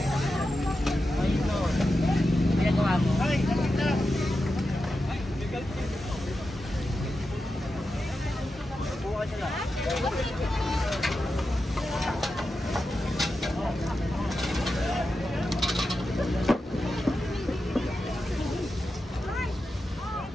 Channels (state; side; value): normal; both; correlation 0.90